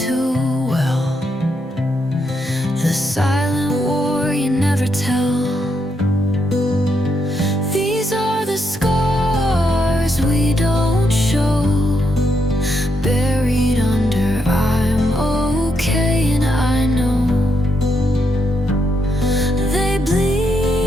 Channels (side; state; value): both; normal; correlation 0.79